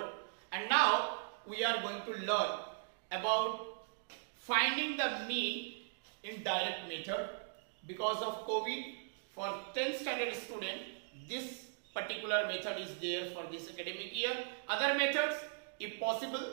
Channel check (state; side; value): silent; left; digital silence